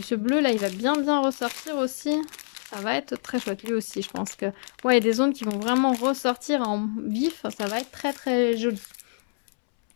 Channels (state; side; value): silent; right; 61 dB below the other